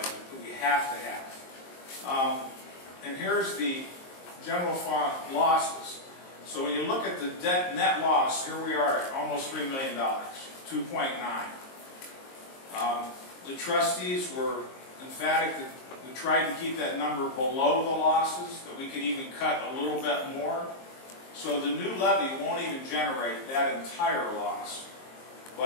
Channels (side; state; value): right; late; 22 ms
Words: that we have to have. And here's the general fund losses. So when you look at the net loss, here we are at almost $3 million, 2.9. The trustees were emphatic that we tried to keep that number below the losses, that we could even cut a little bit more. So the new levy won't even generate that entire loss.